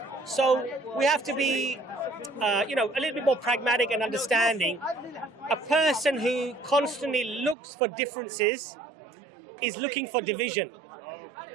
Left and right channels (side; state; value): left; drops out; at 7.6 s